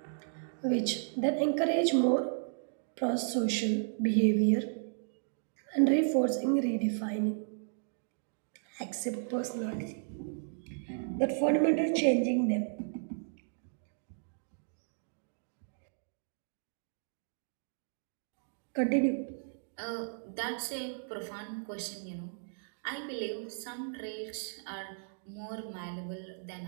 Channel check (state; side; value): silent; left; digital silence